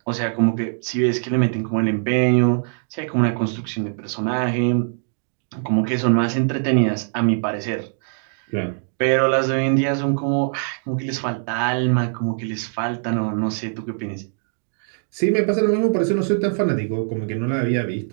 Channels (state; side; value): silent; left; digital silence